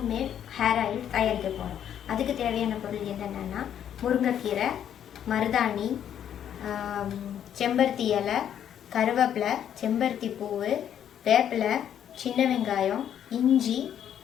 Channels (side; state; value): right; quieter; 9.7 dB